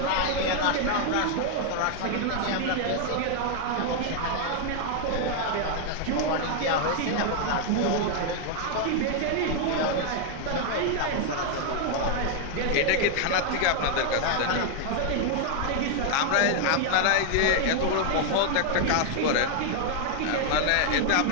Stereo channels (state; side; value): different; both; correlation 0.00